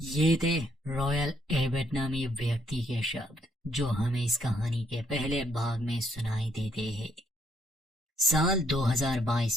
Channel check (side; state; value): both; normal; correlation 0.70